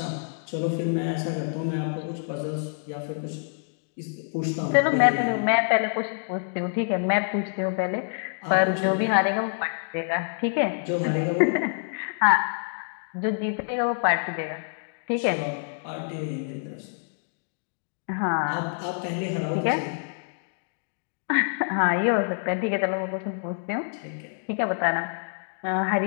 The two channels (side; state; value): right; silent; digital silence